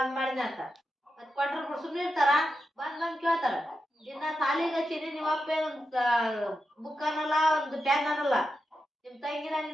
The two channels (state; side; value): normal; both; correlation 0.88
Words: ಮಾಡಿದ್ಯ ಅಂತ. ಮತ್ ಕೊಟ್ರ ಸುಮ್ನೆ ಇರ್ತಾರ? ಬಂದ್ ಕೇಳ್ತಾರ. ಇನ್ನ ಸಾಲಿಗೆ ಹಚ್ಚಿನಿ, ನಿಮ್ಮಪ್ಪ ಬುಕ್ ಅನ್ನಲ್ಲ, ಒಂದು ಪ್ಯಾನ್ ಅನ್ನಲ್ಲ. ನಿಮ್ ತಂಗಿನ